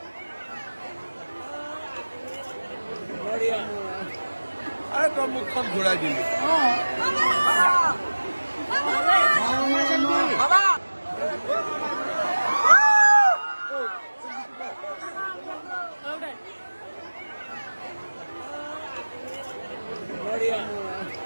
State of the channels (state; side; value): inverted; both; correlation -1.00